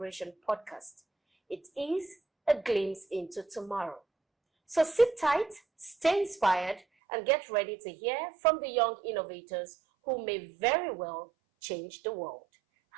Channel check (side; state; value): left; drops out; at 6.8 s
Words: podcast. It is a glimpse into tomorrow. So sit tight, stay inspired, and get ready to hear from the young innovators who may very well change the world.